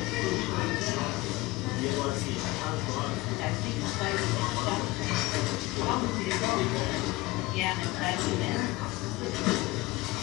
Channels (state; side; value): quieter; right; 21.0 dB